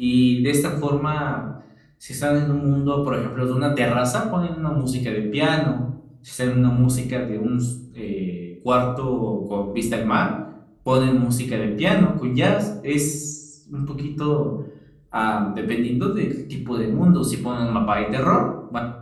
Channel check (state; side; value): identical; both; correlation 1.00